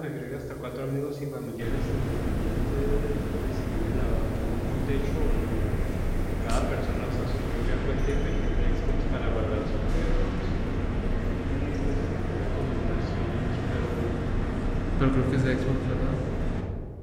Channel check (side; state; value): both; identical; correlation 1.00